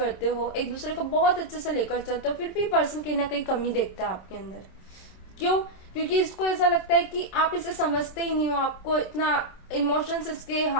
हो, एक दूसरे को बहुत अच्छे से लेकर चलते हो, फिर भी पर्सन कहीं ना कहीं कमी देखता है आपके अंदर। क्यों? क्योंकि इसको ऐसा लगता है कि आप इसे समझते ही नहीं हो, आपको इतना इमोशंस इसके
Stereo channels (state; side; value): late; right; 27 ms